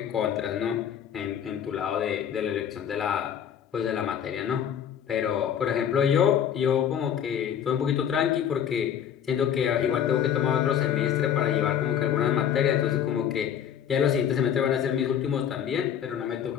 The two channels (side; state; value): right; quieter; 9.0 dB